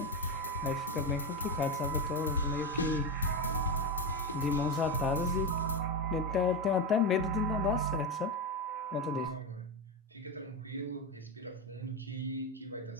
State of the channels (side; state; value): both; normal; correlation 0.13